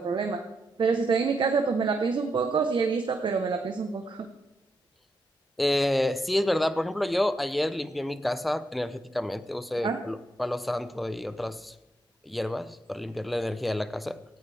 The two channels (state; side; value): normal; both; correlation 0.81